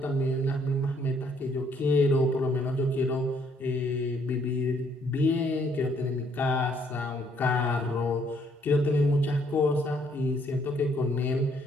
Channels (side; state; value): both; normal; correlation 0.67